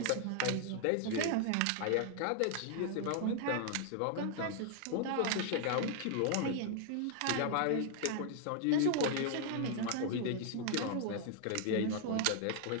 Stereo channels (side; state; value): both; different; correlation 0.00